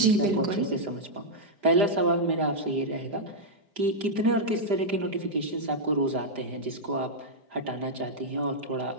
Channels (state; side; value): late; left; 4.9 ms